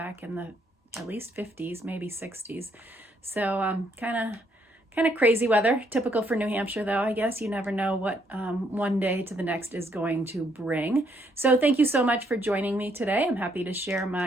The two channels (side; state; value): both; normal; correlation 0.71